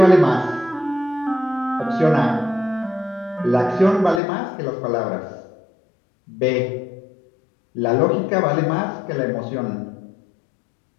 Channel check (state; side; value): drops out; right; at 4.2 s